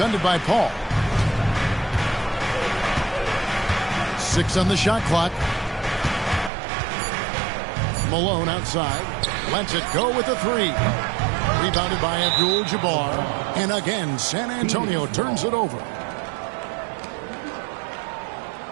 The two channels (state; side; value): drops out; left; at 6.5 s